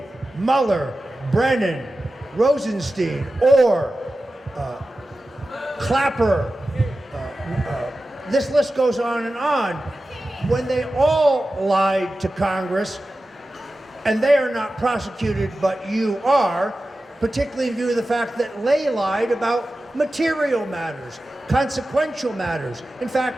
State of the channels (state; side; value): normal; both; correlation 0.94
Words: Mueller, Brennan, Rosenstein, Orr, Clapper, this list goes on and on, when they all lied to Congress, and they are not prosecuted, but you are, particularly in view of the fact that they lied about material matters, consequential matters. In